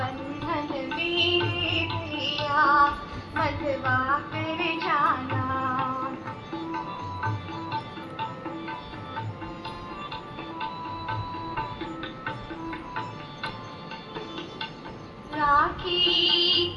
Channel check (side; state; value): both; identical; correlation 1.00